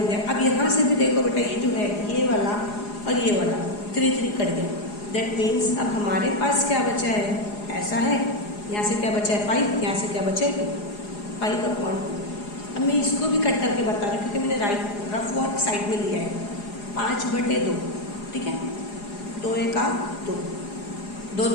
गया। अब यहाँ से भी देखो बेटा, ये जो है ये वाला और ये वाला 3 3 कट गया, दैट मीन्स अब हमारे पास क्या बचा है, ऐसा है, यहाँ से क्या बचा है 5, यहाँ से क्या बचा है 5/2। अब मैं इसको भी कट करके बता रही हूँ क्योंकि मैंने रफ वर्क साइड में लिया है, 5/2, ठीक है, 2 1 2, 2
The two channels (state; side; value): late; right; 4.8 ms